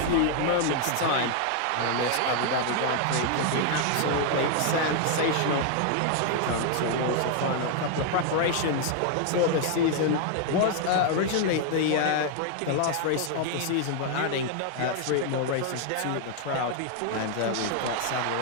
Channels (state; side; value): different; both; correlation 0.00